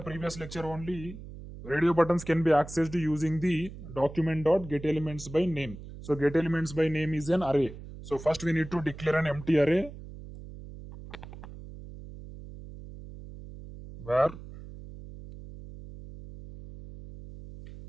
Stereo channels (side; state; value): right; noise; hum, 14 dB below the sound